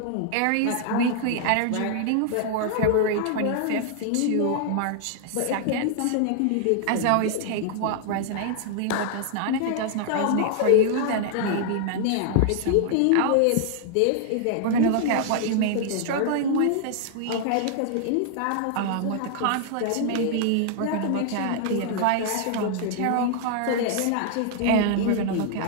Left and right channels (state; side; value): different; both; correlation 0.00